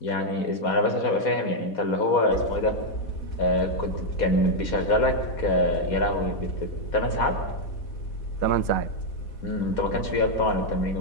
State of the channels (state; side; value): late; right; 4.2 ms